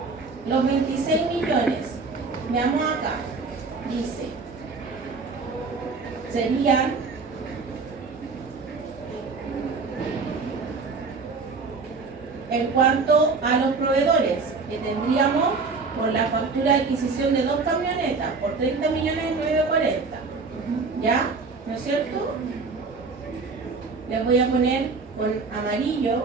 Los 26 millones. Veamos acá. Dice, serían en cuanto a los proveedores, que tendríamos por la factura de adquisición de 2 camionetas por 30.940.000. ¿Ya? ¿No es cierto? Les voy a poner con amarillo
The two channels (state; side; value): quieter; left; 4.3 dB